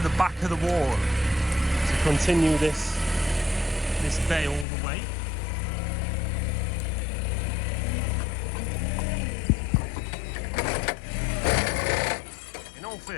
back of the wall to continue this bay all the way. all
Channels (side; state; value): right; drops out; at 4.7 s